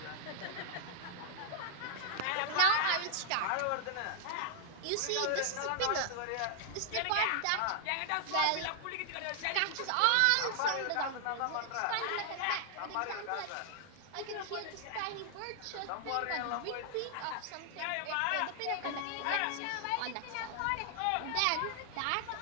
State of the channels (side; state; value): both; different; correlation 0.00